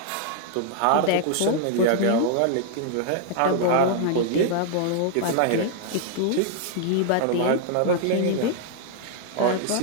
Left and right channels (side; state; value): both; different; correlation -0.01